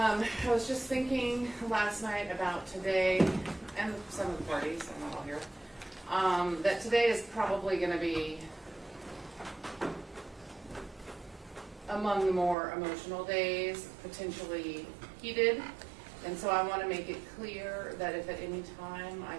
was just thinking last night about today, and some of the parties, I'm not all here, that today is probably going to be among the more emotional days, potentially heated. And so I want to make it clear that if at any time I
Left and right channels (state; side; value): drops out; left; at 12.6 s